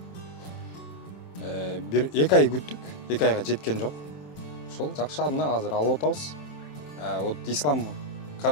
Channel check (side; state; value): right; late; 27 ms